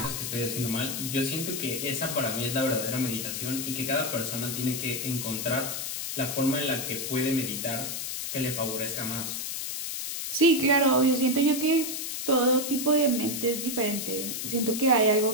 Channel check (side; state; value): left; noise; hiss, 4 dB below the sound